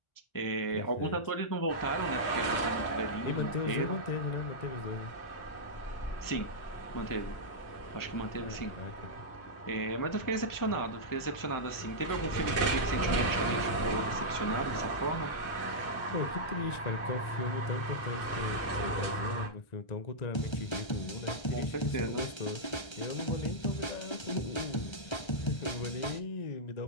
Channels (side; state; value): right; late; 1.3 ms